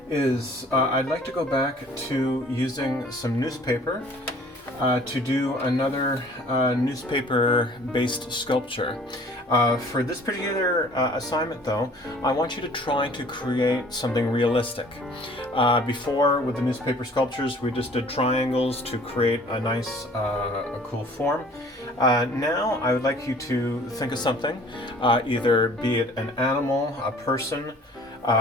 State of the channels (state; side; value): normal; both; correlation 0.51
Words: is I'd like to go back to using some newspaper to do another newspaper-based sculpture. For this particular assignment, though, I want you to try to create something realistic. Before, with the newspaper sculptures, we just did triangles to create a nice, a cool form. Now, I would like you to think of something, either be it an animal, a person,